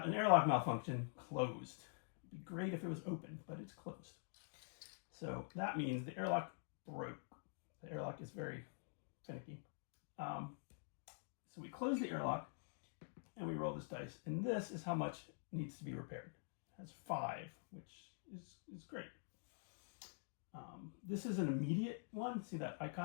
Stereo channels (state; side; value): silent; right; digital silence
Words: an airlock malfunction closed. It'd be great if it was open, but it's closed. So that means the airlock broke. The airlock is very finicky. So we close the airlock and we roll this dice, and this is how much needs to be repaired. It has 5, which is great. This is an immediate one. See that